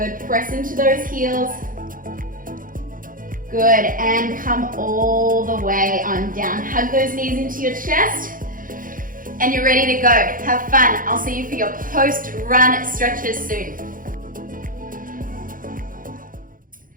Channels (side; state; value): left; late; 0.40 ms